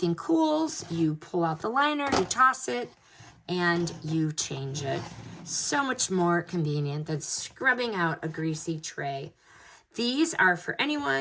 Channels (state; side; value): identical; both; correlation 1.00